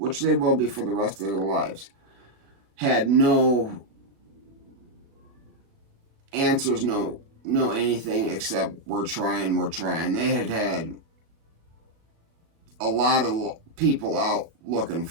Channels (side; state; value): left; late; 36 ms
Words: they will be for the rest of their lives, had no answers, no anything except we're trying. They had a lot of people out looking